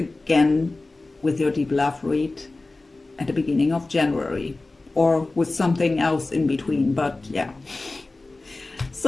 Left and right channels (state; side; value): quieter; right; 3.2 dB